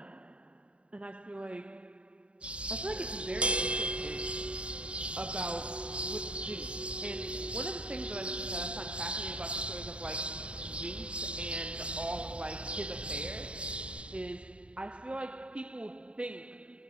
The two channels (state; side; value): late; left; 0.059 ms